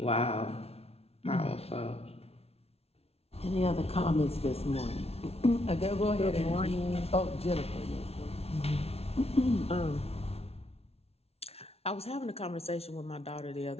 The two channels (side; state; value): right; late; 0.30 ms